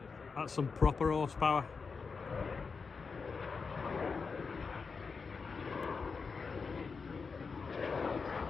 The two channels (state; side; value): quieter; right; 5.0 dB